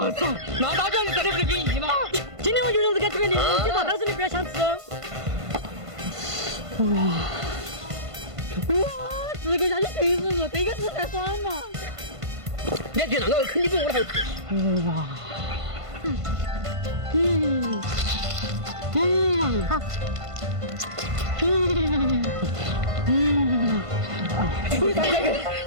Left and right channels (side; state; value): left; late; 1.5 ms